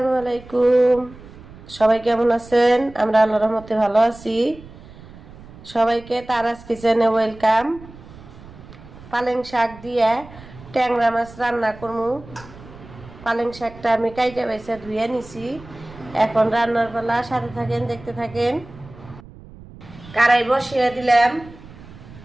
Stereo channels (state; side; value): noise; right; rumble, 19 dB below the sound